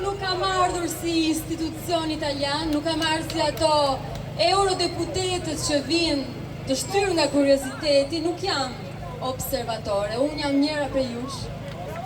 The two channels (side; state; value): both; identical; correlation 1.00